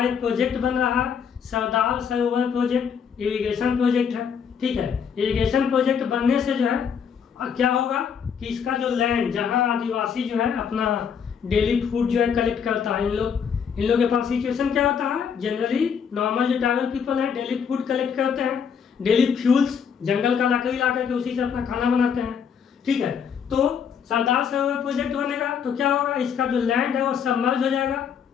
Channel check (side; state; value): right; quieter; 7.1 dB